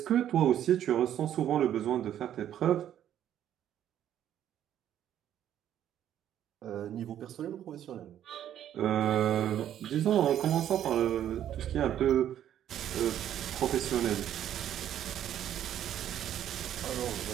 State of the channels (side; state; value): left; quieter; 10.8 dB